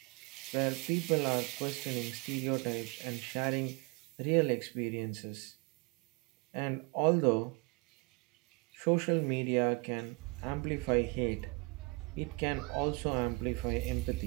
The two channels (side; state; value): left; quieter; 28.5 dB